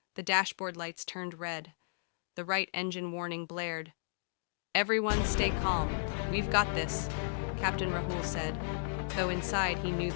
The dashboard lights turned red. The right engine warning blared. "Everyone stay calm. We've got this," Captain Rahul said, though inside he knew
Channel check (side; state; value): right; silent; digital silence